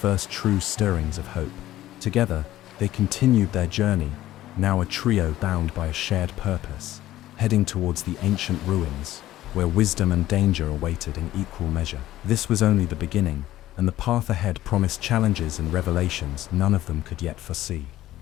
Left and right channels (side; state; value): right; quieter; 14.5 dB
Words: true stirrings of hope. Together, they continued their journey, now a trio bound by a shared purpose, heading towards the ancient ruins, where wisdom and danger awaited in equal measure. This was only the beginning, and the path ahead promised challenges and revelations none of them could yet foresee.